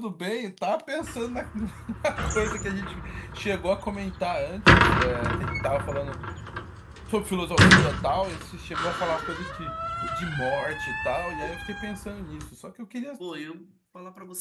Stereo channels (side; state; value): both; identical; correlation 1.00